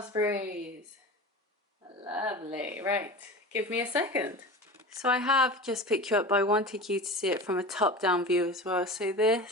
Lovely. Right, give me a second. So I have just picked you up, but I wanted you to see it from a top-down view as well. So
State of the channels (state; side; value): normal; both; correlation 0.32